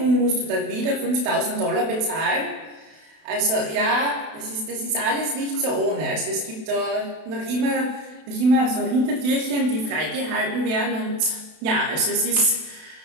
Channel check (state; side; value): late; left; 32 ms